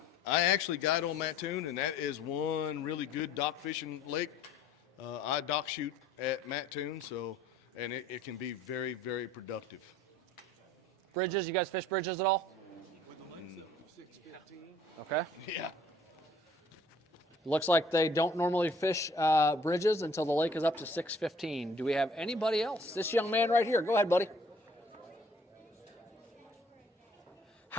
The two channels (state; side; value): normal; both; correlation 0.56